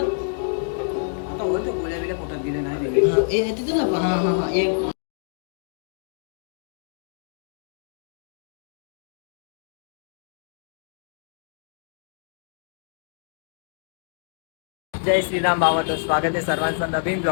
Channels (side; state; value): right; silent; digital silence